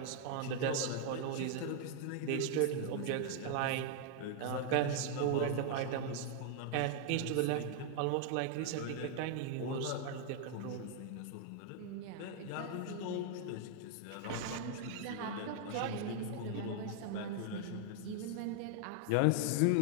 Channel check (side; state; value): both; different; correlation 0.00